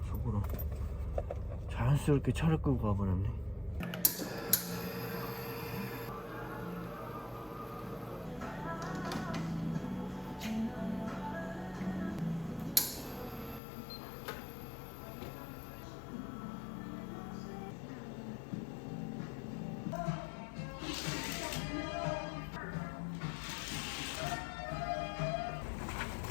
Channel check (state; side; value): drops out; right; at 13.6 s